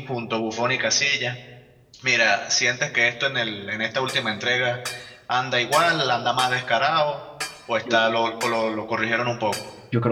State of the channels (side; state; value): both; identical; correlation 1.00